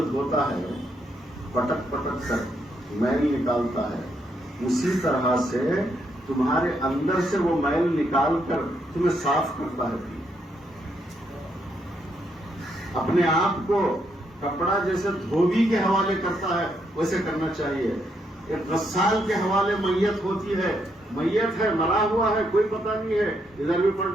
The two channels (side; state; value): both; normal; correlation 0.77